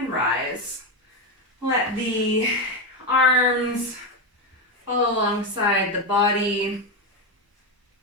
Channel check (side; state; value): both; normal; correlation 0.10